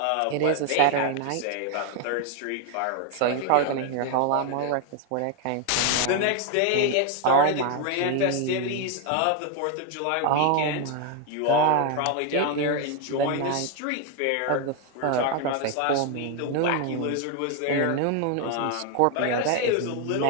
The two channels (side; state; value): both; different; correlation 0.01